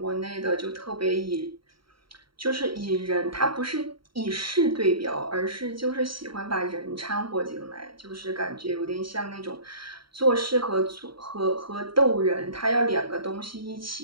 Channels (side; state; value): left; late; 0.74 ms